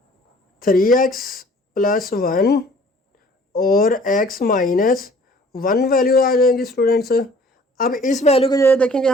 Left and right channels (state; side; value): normal; both; correlation 0.53